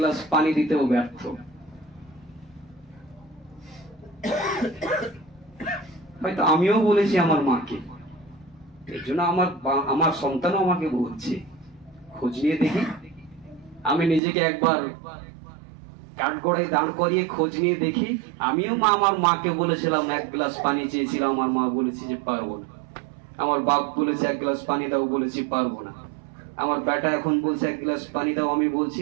পানি দিতেও ব্যর্থ। হয়তো আমিও বলেছি আমার মাকে, এর জন্য আমার সন্তানও আমাকে বলছে। খোঁজ নিয়ে দেখি, আমি নিজেকে একবার কাঠগড়ায় দাঁড় করিয়ে খোঁজ নিয়ে দেখি। আমিও আমার মাকে বলেছিলাম এক গ্লাস পানি চেয়েছিলাম, আমার মা বলেছি যে পারবো না। আমার বাপ বলেছে এক গ্লাস পানি দাও, বলেছি পারবো না। আমার বেটা এখন বলছে এক গ্লাস পানি দাও, আমি বলছি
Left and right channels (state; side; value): drops out; left; at 14.2 s